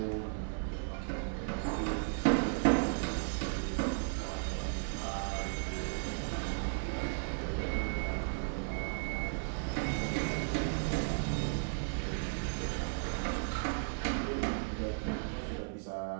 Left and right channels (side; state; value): left; silent; digital silence